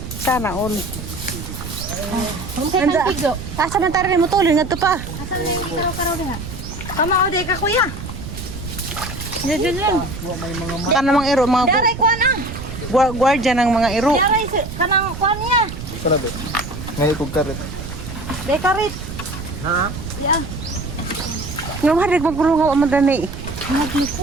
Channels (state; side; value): noise; right; rumble, 9 dB below the sound